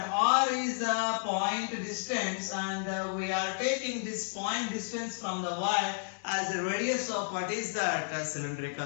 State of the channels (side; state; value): right; silent; digital silence